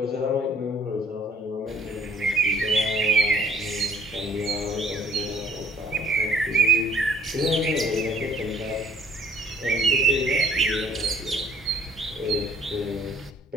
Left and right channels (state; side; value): normal; both; correlation 0.58